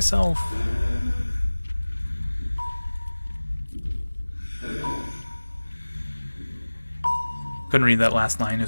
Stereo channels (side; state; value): both; inverted; correlation -1.00